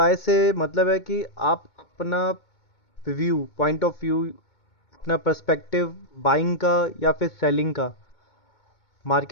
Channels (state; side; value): late; right; 2.2 ms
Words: से मतलब है कि आप अपना व्यू, पॉइंट ऑफ व्यू, अपना पर्सपेक्टिव बाइंग का या फिर सेलिंग का